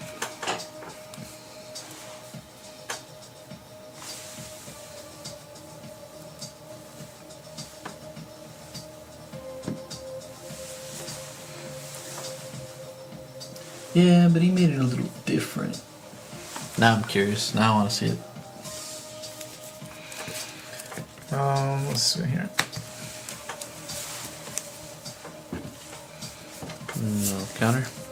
Yeah, but he made it a little different. Now I'm curious. Now I want to see it. Let's see here. No counter.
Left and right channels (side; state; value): both; identical; correlation 1.00